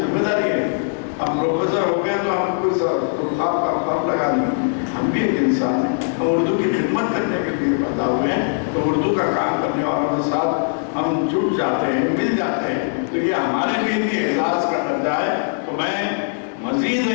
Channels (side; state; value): right; silent; 63 dB below the other